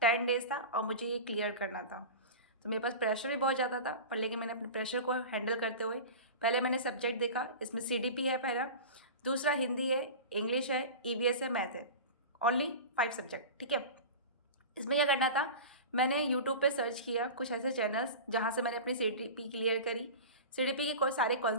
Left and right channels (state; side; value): inverted; both; correlation -0.30